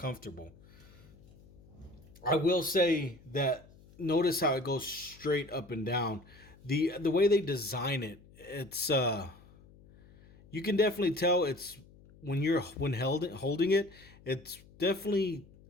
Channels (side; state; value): left; noise; hum, 24 dB below the sound